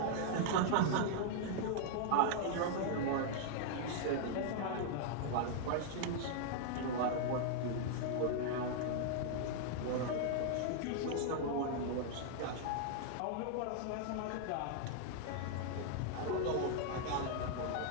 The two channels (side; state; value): both; different; correlation -0.01